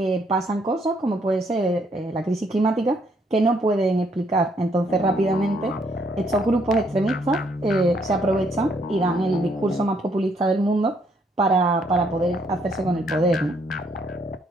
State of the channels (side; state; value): both; normal; correlation 0.70